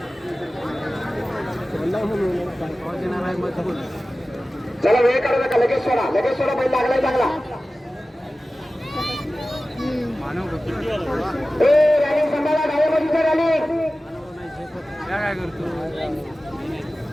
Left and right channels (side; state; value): both; normal; correlation 0.96